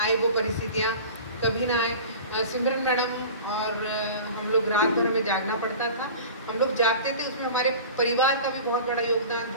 वो परिस्थितियाँ, कभी ना आए। सिमरन मैडम और हम लोग रात भर हमें जागना पड़ता था। हम लोग जागते थे, उसमें हमारे परिवार का भी बहुत बड़ा योगदान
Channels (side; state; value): both; inverted; correlation -0.38